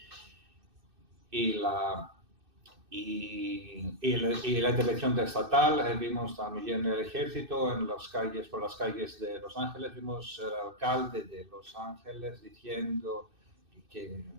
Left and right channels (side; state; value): left; late; 2.6 ms